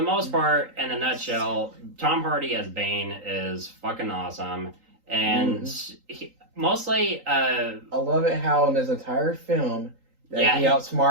most part, in a nutshell, Tom Hardy as Bane is fucking awesome. And mostly I love it how in this entire film that he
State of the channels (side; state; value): left; late; 3.8 ms